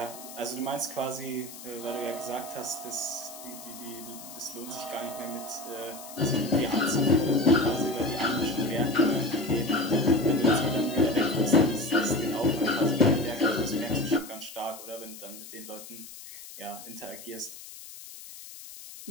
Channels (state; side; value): noise; left; hiss, 15 dB below the sound